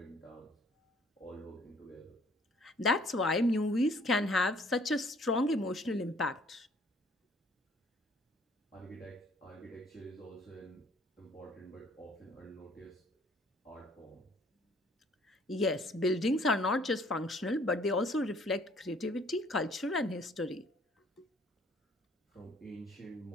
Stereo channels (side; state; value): both; normal; correlation 0.59